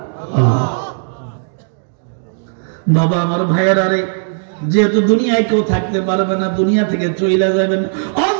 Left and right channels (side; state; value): left; silent; digital silence